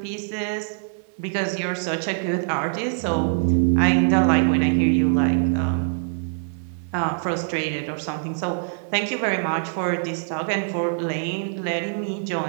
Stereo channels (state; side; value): silent; left; digital silence